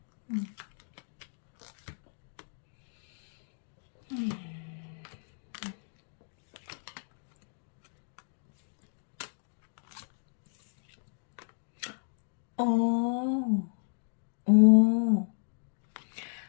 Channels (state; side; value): silent; right; 55 dB below the other